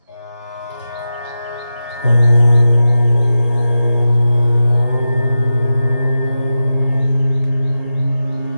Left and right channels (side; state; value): both; inverted; correlation -0.91